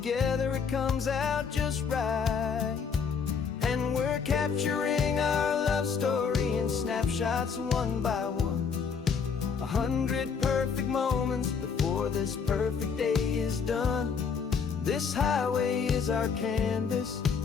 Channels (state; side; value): quieter; right; 6.1 dB